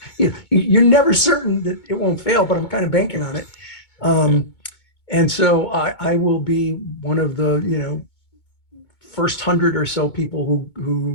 you're never certain that it won't fail, but I'm kind of banking on it. And so I will be one of the, first 100 or so people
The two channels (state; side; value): late; right; 2.2 ms